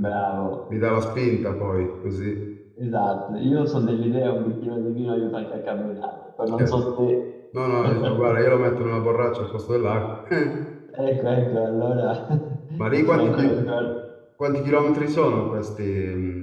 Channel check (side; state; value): both; identical; correlation 1.00